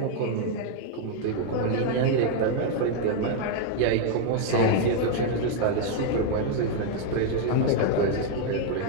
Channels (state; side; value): different; both; correlation 0.00